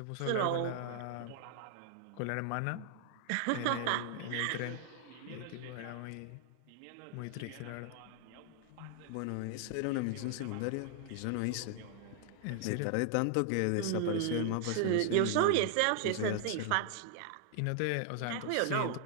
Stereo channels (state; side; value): different; both; correlation 0.00